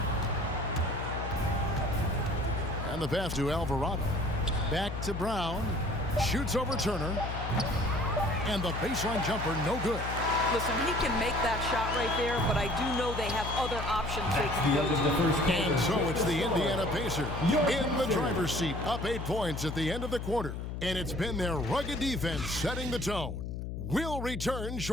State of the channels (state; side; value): noise; left; hum, 5 dB below the sound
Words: And the pass to Alvarado. Back to Brown. Shoots over Turner. And the baseline jumper, no good. Listen, he can make that shot right there, but I do know they have other options they can go to. And so it's the Indiana Pacers in the driver's seat, up 8 points at the end of the quarter. And it's been their rugged defense setting the tone. We'll return